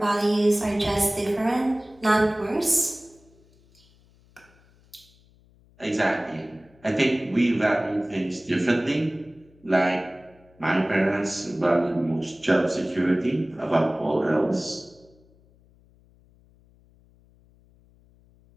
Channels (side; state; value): left; noise; hum, 30 dB below the sound